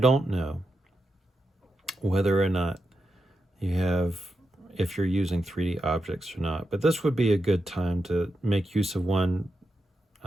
know whether or not if you're using 3D objects or not, but this would be a good time to make use of one,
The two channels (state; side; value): normal; both; correlation 0.87